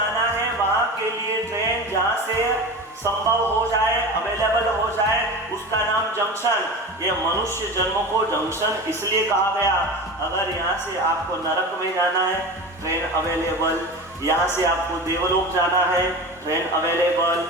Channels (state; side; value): normal; both; correlation 0.30